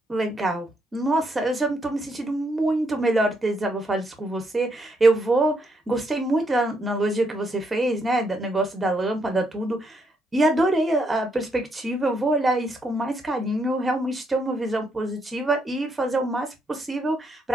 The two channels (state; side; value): normal; both; correlation 0.76